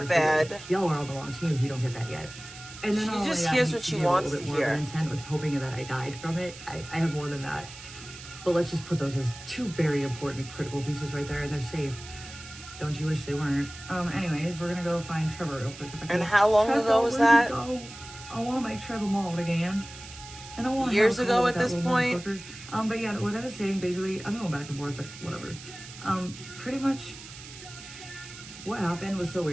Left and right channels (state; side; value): noise; right; hiss, 15 dB below the sound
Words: bad. Y'all are on the wrong team if you don't get that yet. And then she just hears what she wants to hear. Intent with hoping that I died from it. I have more than that. But let's just put those as 2 very important critical pieces right there, and they're safe. Don't you wish they weren't? Anyways, we're gonna go find Trevor real quick. And how long ago was that? I want to make Trevor mauled again. And I want years ago at this point. But yeah, what I was saying, basically, I'm going back and forth, but whatever. Pretty much what happened was so